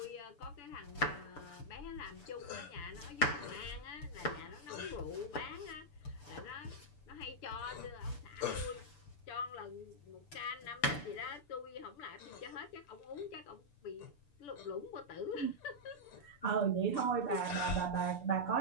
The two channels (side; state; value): right; late; 6.9 ms